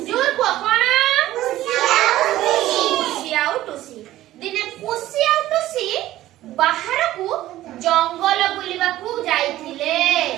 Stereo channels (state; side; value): quieter; left; 14.8 dB